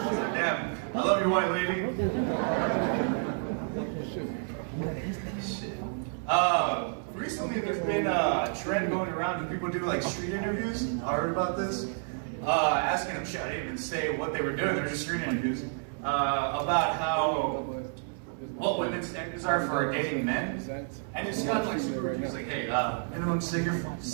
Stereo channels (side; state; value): left; silent; 58 dB below the other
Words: Damn, I love you, white lady. Shit. Recently there's been a trend going around when people do street interviews. I heard about this. Asking them shit. I didn't even say what they were doing. They're just street interviews about what women's standards are for dating men. And it's got super. It's like, hey, minimum